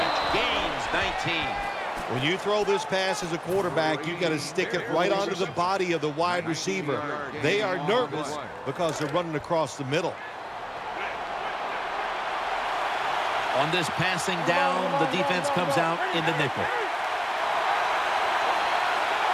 Gains 19. When you throw this pass as a quarterback, you got to stick it right onto the body of the wide receiver. They are nervous because they're running across the middle. On this passing down, the defense comes out in the nickel.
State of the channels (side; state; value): both; identical; correlation 1.00